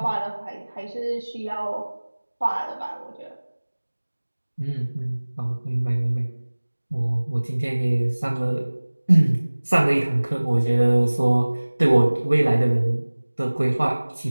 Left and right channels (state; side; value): inverted; both; correlation -1.00